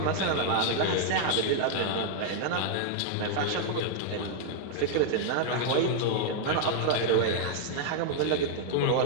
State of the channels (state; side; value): different; both; correlation -0.01